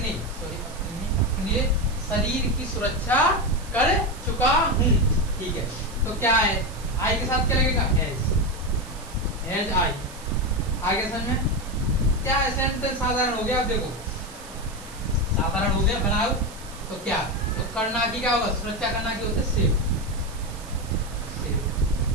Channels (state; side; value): noise; right; hiss, 18 dB below the sound